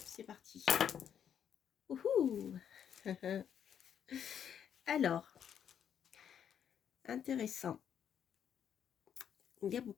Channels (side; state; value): right; quieter; 8.7 dB